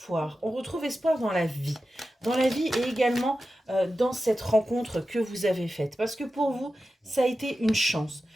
On retrouve espoir dans la vie. Dans la vie et également dans cette rencontre que vous avez faite. Parce que pour vous, ça a été une chance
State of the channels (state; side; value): normal; both; correlation 0.93